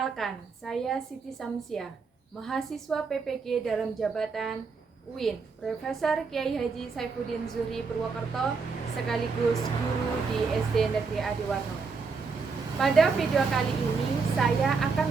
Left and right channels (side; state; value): left; quieter; 4.8 dB